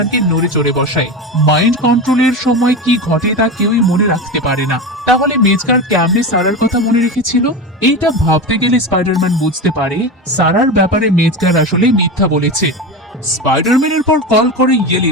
নড়ে চড়ে বসায়। মাইন্ড কন্ট্রোলের সময় কি ঘটে তা কেউই মনে রাখতে পারে না। তাহলে মেজগার কেমনে সারার কথা মনে রেখেছিল? এইটা ভাবতে গেলে স্পাইডারম্যান বুঝতে পারে সারার ব্যাপারে মেজগার আসলে মিথ্যা বলেছে। স্পাইডারম্যানের পর কল করে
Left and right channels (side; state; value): both; normal; correlation 0.22